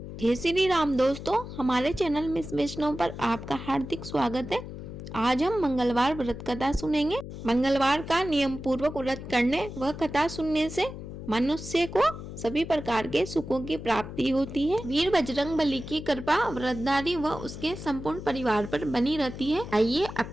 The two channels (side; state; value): left; noise; hum, 10 dB below the sound